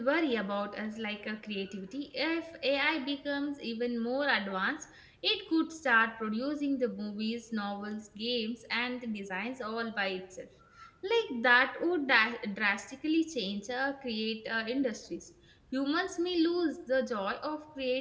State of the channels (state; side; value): identical; both; correlation 1.00